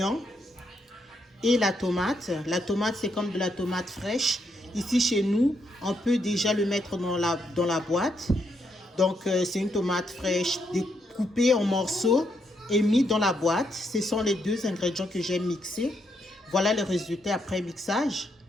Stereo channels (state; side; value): normal; both; correlation 0.78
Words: et la tomate. La tomate, c'est comme de la tomate fraîche. Ici, chez nous, on peut déjà le mettre dans la boîte. Donc, c'est une tomate fraîche découpée en morceaux et mis dans la boîte. Ce sont les 2 ingrédients que j'ai mixés. Voilà le résultat après mixage.